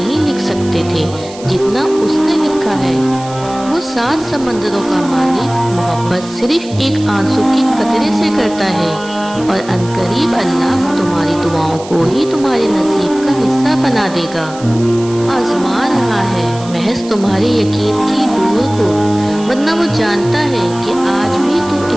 لکھ سکتے تھے جتنا اس نے لکھا ہے۔ وہ 7 سمندروں کا مالک محبت صرف ایک آنسو کے قطرے سے کرتا ہے، اور عنقریب اللہ تمہاری دعاؤں کو ہی تمہارے نصیب کا حصہ بنا دے گا۔ آزما رہا ہے محض تمہارے یقین کی ڈور کو، ورنہ وہ جانتا ہے کہ آج بھی تم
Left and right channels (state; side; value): noise; right; hiss, 18 dB below the sound